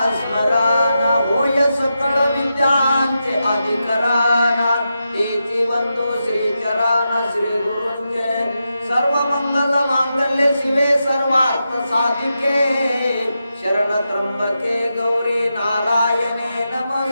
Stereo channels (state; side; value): inverted; both; correlation -0.88